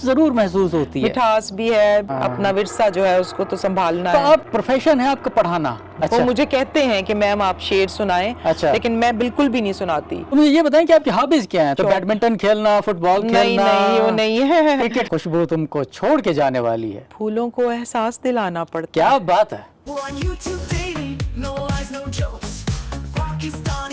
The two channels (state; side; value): identical; both; correlation 1.00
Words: ضرور محسوس ہوتی ہے. مٹھاس بھی ہے, اپنا ورثہ جو ہے اس کو تو سنبھالنا ہے. تو آپ پروفیشن ہے آپ کا پڑھانا؟ وہ مجھے کہتے ہیں کہ میم آپ شعر سنائیں, لیکن میں بالکل بھی نہیں سناتی. مجھے یہ بتائیں کہ آپ کی ہابیز کیا ہیں؟ تو بیڈمنٹن کھیلنا, فٹ بال کھیلنا؟ نہیں, وہ نہیں ہے. کرکٹ. خوشبو تم کو چھوڑ کے جانے والی ہے. پھولوں کو احساس دلانا پڑتا. کیا بات ہے.